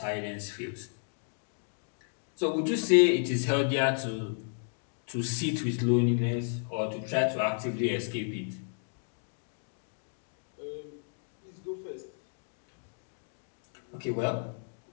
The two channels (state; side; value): silent; right; digital silence